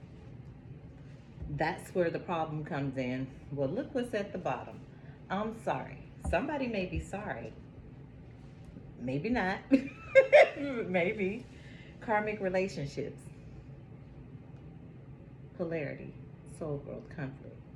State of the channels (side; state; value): both; identical; correlation 1.00